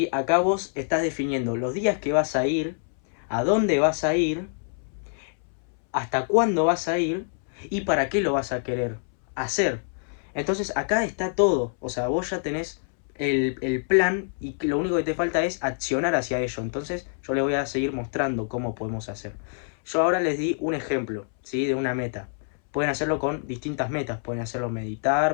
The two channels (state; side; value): silent; right; 61 dB below the other